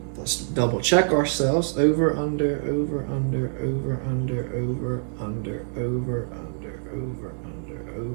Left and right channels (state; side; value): silent; left; digital silence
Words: Let's double check ourselves. Over, under, over, under, over, under, over, under, over, under, over, under,